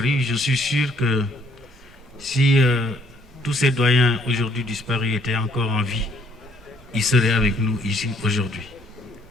Je suis sûr que si tous ces doyens aujourd'hui disparus étaient encore en vie, ils seraient avec nous ici aujourd'hui.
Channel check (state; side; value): normal; both; correlation 0.64